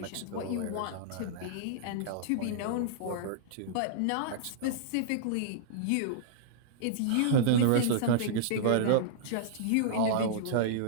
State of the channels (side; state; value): both; different; correlation -0.02